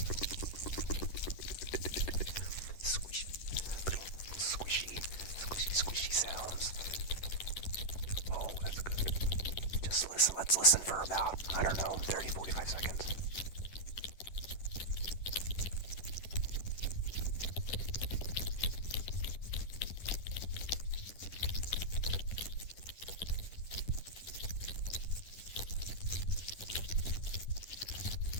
Squishy, little squishy sounds. Oh, that's good. Just listen. Let's listen for about, I don't know, 30, 45 seconds.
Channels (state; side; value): late; right; 10 ms